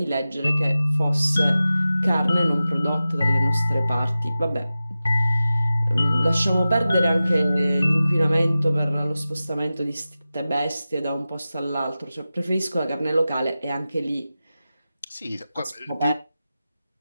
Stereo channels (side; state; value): both; inverted; correlation -0.94